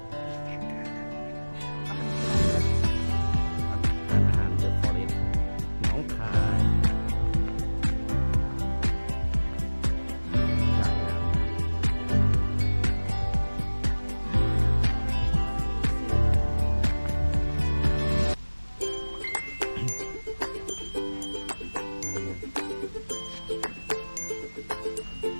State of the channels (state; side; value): inverted; both; correlation -1.00